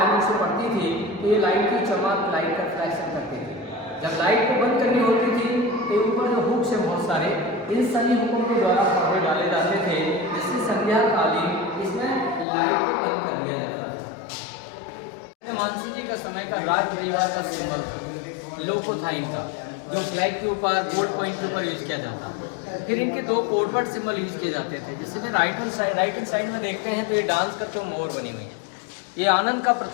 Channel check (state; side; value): drops out; right; at 12.5 s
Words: से पड़ती थी तो ये लाइट की चमक, लाइट का रिफ्लेक्शन करती थी। जब लाइट को बंद करनी होती थी तो ऊपर जो हुक्स है बहुत सारे, इन सभी हुकों के द्वारा पर्दे डाले जाते थे जिससे संध्या कालीन इसमें लाइट को बंद कर दिया जाता था। मानसिंह जी का समय का राज परिवार का सिंबल था, लोगो था इनका, जो ब्लैक के ऊपर गोल्ड कॉइन के ऊपर यूज किया जाता। फिर इनके 2 कोडवर्ड सिंबल यूज किए जाते थे। जिससे में राइट हैंड साइड में देखते हैं तो ये डांस करते हुए मोर बनी हुई है। ये आनंद का